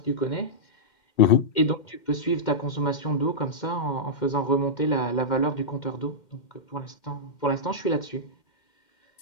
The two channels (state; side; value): late; right; 2.1 ms